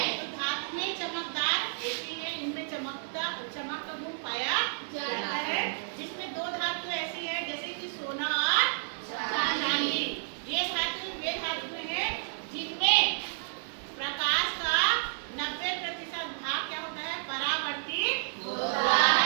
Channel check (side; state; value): left; silent; 57 dB below the other